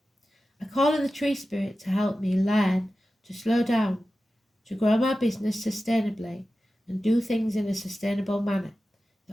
I call in the tree spirit to help me learn to slow down, to grow my business sustainably, and do things in a sustainable manner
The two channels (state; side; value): normal; both; correlation 0.94